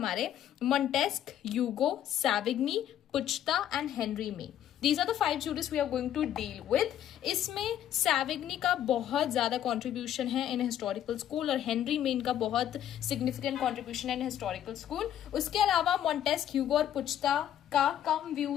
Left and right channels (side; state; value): right; quieter; 10.9 dB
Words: Montesquieu, Hugo, Savigny, Puchta and Henry Maine. These are the 5 jurists we are going to deal with. इसमें सैविग्नी का बहुत ज़्यादा contribution है in historical school और Henry main का बहुत significant contribution है in historical school. उसके अलावा मॉन्टेस्क, ह्यूगो और पुचता का कम